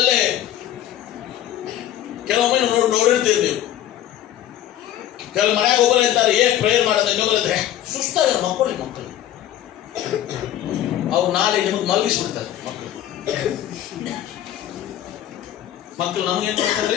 ಕೆಲವೊಮ್ಮೆ ನೋಡಿರ್ತೀರಿ ನೀವು, ಕೆಲವು ಮನೆಯಾಗ ಒಬ್ಬರು ಇರ್ತಾರೆ, ಪ್ರೇಯರ್ ಮಾಡೋದು, ಇನ್ನೊಬ್ಬರಿದ್ರೆ ಸುಸ್ತಾಗ ಮಕ್ಕಳು ಅವ್ರು ನಾಳೆ ನಿಮಗೆ ಮಲಗಿಸ್ಬಿಡ್ತಾರೆ. ಮಕ್ಕಳು ನಮಗೇನ್ ಮಾಡ್ತಾರೆ,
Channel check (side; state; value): right; quieter; 12.0 dB